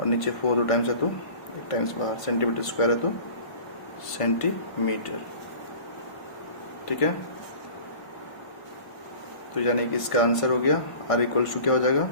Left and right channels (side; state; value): right; late; 1.5 ms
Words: नीचे 4 2 टाइम्स है तो 1 टाइम्स बाहर, सेंटीमीटर स्क्वायर है तो सेंटीमीटर। ठीक है, तो यानी कि इसका आंसर हो गया आर इक्वल्स टू क्या हो जाएगा